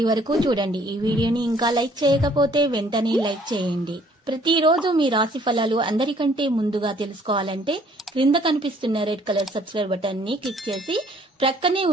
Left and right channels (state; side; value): normal; both; correlation 0.60